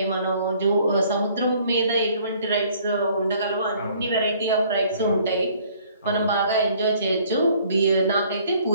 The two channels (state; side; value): inverted; both; correlation -0.59